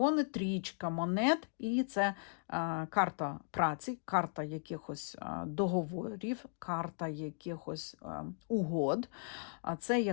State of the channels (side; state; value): right; silent; digital silence